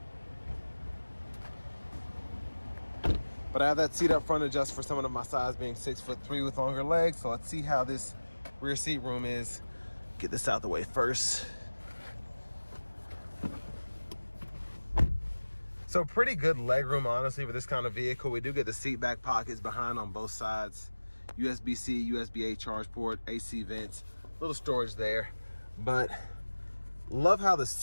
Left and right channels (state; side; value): inverted; both; correlation -1.00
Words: But I have that seat up front adjust for someone of my size, being 6'3" with longer legs. So let's see how this rear seat room is. Get this out the way first. So pretty good leg room, honestly, for this kind of vehicle. We do get the seat back pockets behind on both sides. USB-C, USB-A charge port, AC vents, little storage there. But love how the